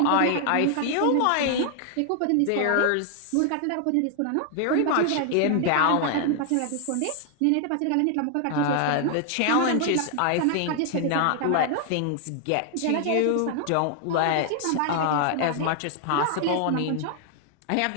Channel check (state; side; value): different; both; correlation 0.00